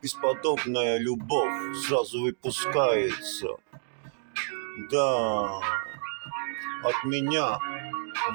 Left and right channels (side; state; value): left; silent; digital silence